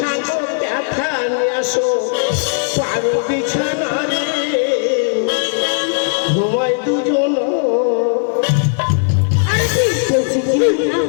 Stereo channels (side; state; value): right; silent; digital silence